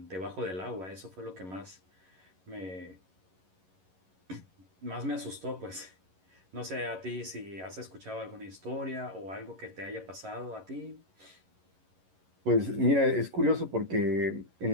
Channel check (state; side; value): late; left; 11 ms